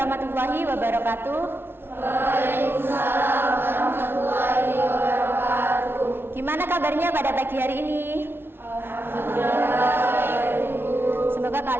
wabarakatuh. Waalaikumsalam warahmatullahi wabarakatuh. Gimana kabarnya pada pagi hari ini? Alhamdulillah. Semoga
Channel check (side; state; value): left; late; 0.11 ms